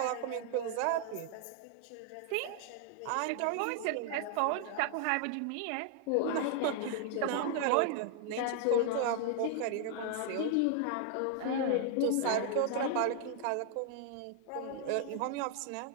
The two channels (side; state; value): both; different; correlation 0.00